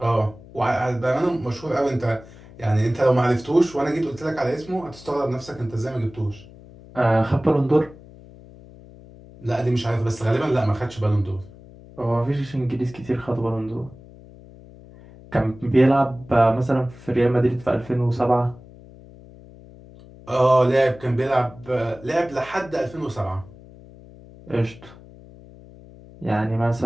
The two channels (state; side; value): noise; left; hum, 20 dB below the sound